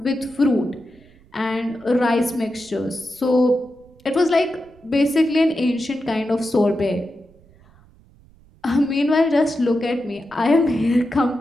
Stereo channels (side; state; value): right; noise; rumble, 28 dB below the sound